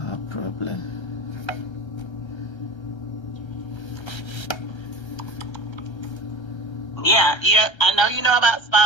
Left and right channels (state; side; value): late; right; 1.3 ms